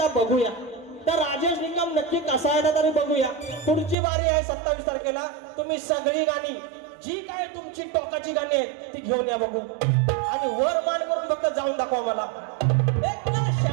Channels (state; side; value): drops out; left; at 4.0 s